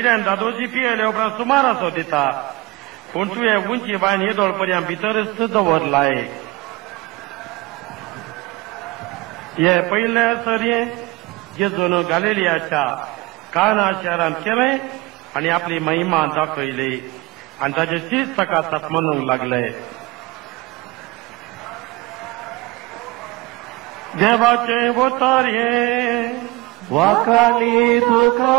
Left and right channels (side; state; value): left; quieter; 21.9 dB